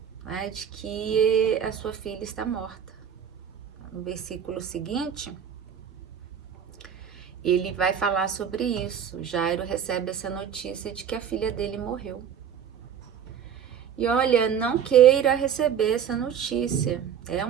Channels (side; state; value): left; quieter; 8.4 dB